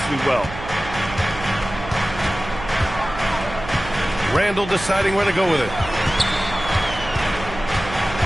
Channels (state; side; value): noise; right; hum, 11 dB below the sound